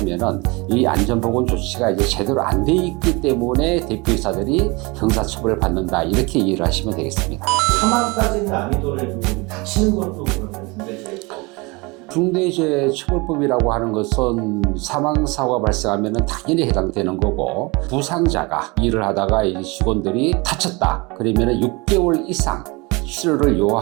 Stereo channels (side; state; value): left; quieter; 26.3 dB